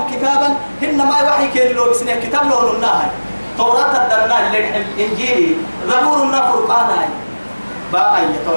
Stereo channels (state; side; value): inverted; both; correlation -1.00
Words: كتابا إن ما يوحي كين لو بسنة كتاب لهم الناهي توراة الدنا الإنجيل زبور النفرقان باقي